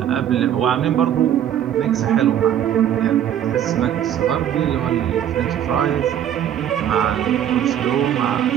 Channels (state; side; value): quieter; left; 10.4 dB